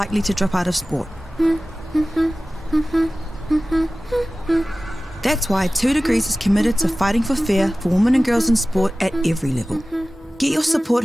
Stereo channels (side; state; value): both; normal; correlation 0.96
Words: to drop out of sport. That's why 2 Degrees is committed to fighting for fair for women and girls in sport at every level. Get your Support